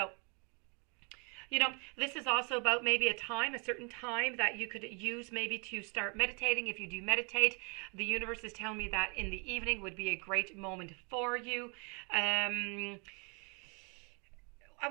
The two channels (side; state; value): left; quieter; 34.4 dB